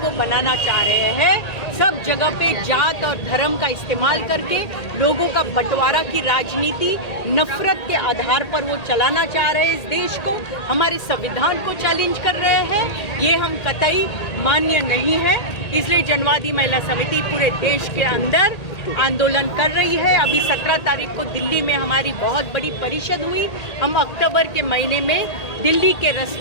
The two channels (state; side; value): late; right; 1.8 ms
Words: बनाना चाह रहे हैं। सब जगह पे जात और धर्म का इस्तेमाल करके लोगों का बंटवारा की राजनीति, नफरत के आधार पर वो चलाना चाह रहे हैं इस देश को। हमारे संविधान को चैलेंज कर रहे हैं। ये हम कतई मान्य नहीं है। इसलिए जनवादी महिला समिति पूरे देश के अंदर आंदोलन कर रही है। अभी 17 तारीख को दिल्ली में हमारी बहुत बड़ी परिषद हुई। हम अक्टूबर के महीने में दिल्ली के